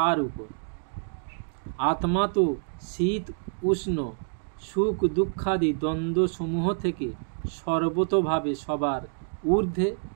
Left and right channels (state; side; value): silent; left; digital silence